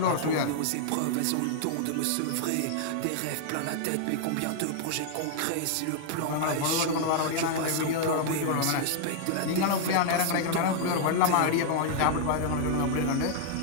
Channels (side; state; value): both; different; correlation -0.01